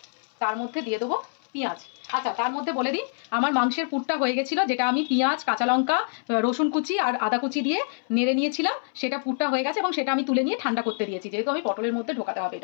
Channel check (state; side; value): silent; right; 61 dB below the other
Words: তার মধ্যে দিয়ে দেবো পেঁয়াজ। আচ্ছা, তার মধ্যে বলে দিই, আমার মাংসের পুরটা হয়ে গেছিলো, যেটা আমি পেঁয়াজ, কাঁচা লঙ্কা, রসুন কুচি আর আদা কুচি দিয়ে নেড়ে নিয়েছিলাম, সেটা পুরটা হয়ে গেছে এবং সেটা আমি তুলে নিয়ে ঠান্ডা করতে দিয়েছি, যেহেতু আমি পটলের মধ্যে ঢোকাতে হবে